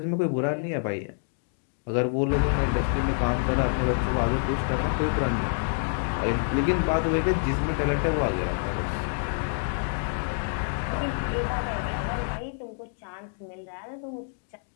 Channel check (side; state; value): right; silent; digital silence